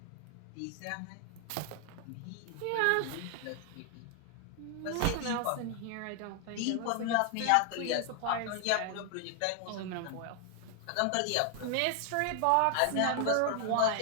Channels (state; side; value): different; both; correlation 0.00